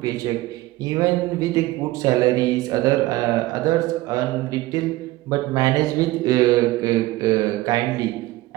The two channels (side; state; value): left; quieter; 18.4 dB